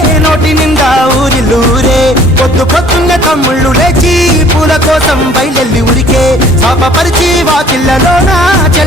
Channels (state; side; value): normal; both; correlation 0.55